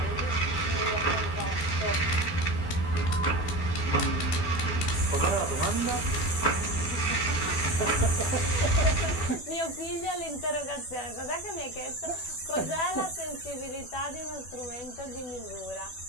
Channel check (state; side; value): late; right; 12 ms